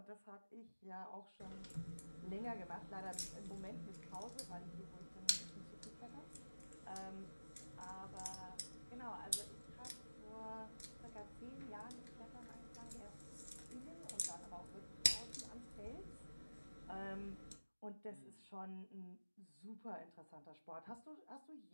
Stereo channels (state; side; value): inverted; both; correlation -1.00